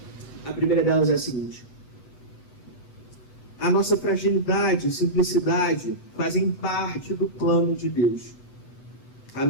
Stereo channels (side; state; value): right; late; 8.0 ms